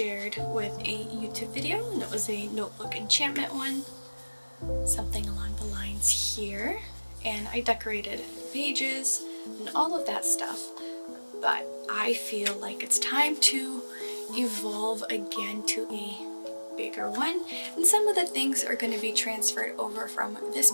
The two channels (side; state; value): both; inverted; correlation -1.00